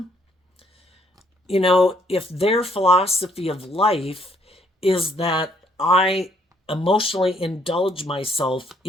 if their philosophy of life is that I emotionally indulge myself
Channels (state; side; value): normal; both; correlation 0.67